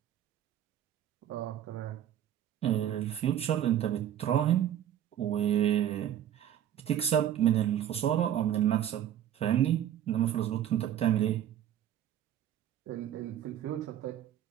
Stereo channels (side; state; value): left; quieter; 10.9 dB